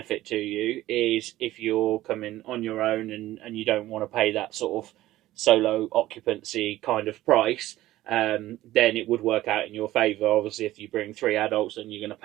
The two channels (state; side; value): quieter; left; 15.5 dB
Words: to you is if you're coming on your own and you don't want to pay that sort of solo occupancy kind of price. Then it would work out in your favour. Obviously, if you bring 3 adults, then you're going to